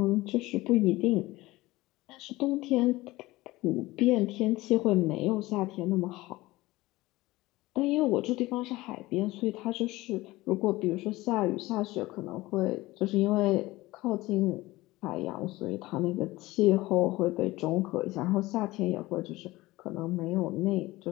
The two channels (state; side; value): quieter; right; 19.2 dB